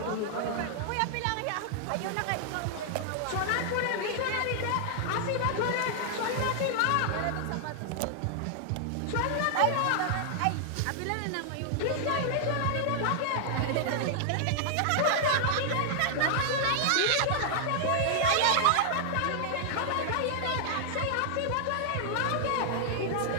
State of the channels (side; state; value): both; different; correlation -0.01